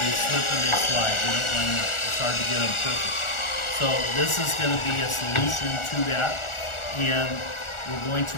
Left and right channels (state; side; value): late; right; 1.4 ms